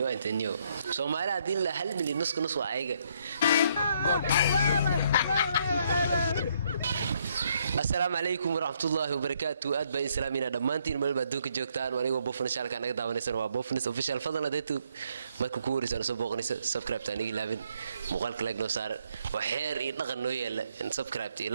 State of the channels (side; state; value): both; inverted; correlation -0.71